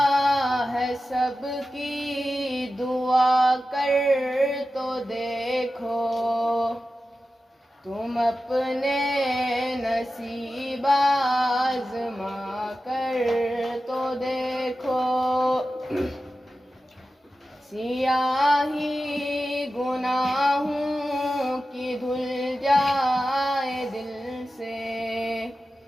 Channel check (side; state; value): both; normal; correlation 0.93